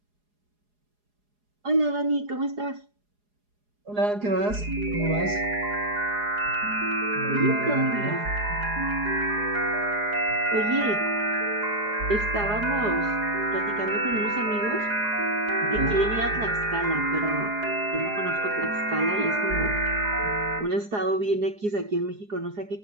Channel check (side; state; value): left; late; 4.8 ms